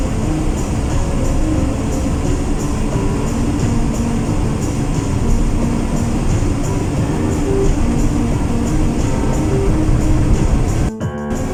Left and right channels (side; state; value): both; identical; correlation 1.00